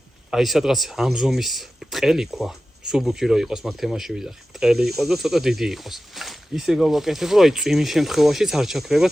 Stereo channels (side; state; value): both; normal; correlation 0.94